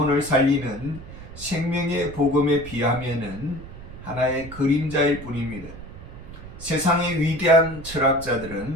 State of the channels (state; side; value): noise; right; rumble, 14 dB below the sound